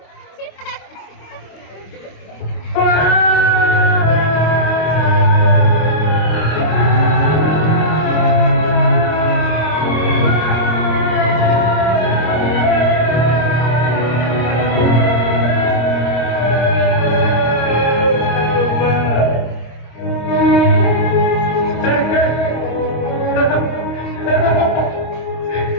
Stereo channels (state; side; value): late; right; 26 ms